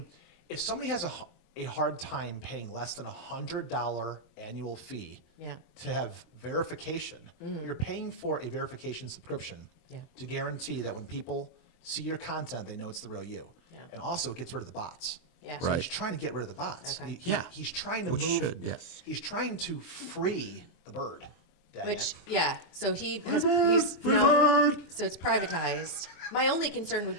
if somebody has a hard time paying less than $100 annual fee Yeah. to have verification, you're paying for a verification subscription Yeah. to guarantee that when people see your content, they know it's the real you. Yeah. And also it gets rid of the bots. Yeah. So Right. he's trying to get rid of the bots. Okay. Yeah. He's trying to Which move. should, yes. He's trying to free the bird. Dang Which it. yeah, so he's now, so it's privatized. My only concern would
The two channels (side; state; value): right; late; 23 ms